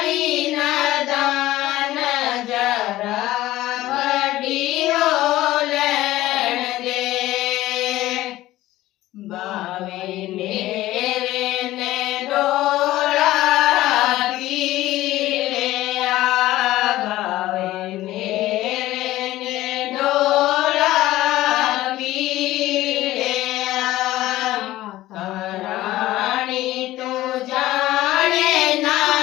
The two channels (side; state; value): right; quieter; 15.9 dB